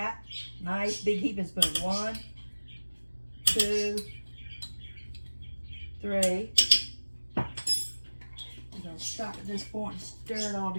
Nice big heaping spoon. 1, 2, 3. We're going to stop at this point and stir it all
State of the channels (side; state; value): both; inverted; correlation -1.00